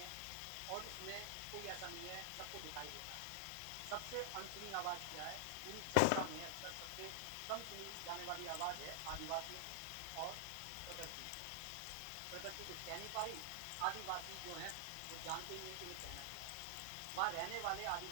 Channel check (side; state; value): both; different; correlation -0.01